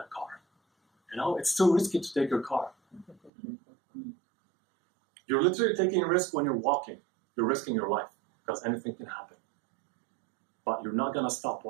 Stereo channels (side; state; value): left; drops out; at 3.3 s